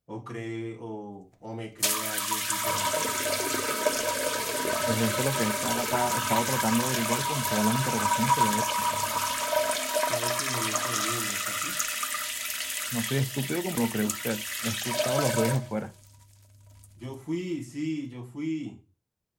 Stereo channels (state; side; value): identical; both; correlation 1.00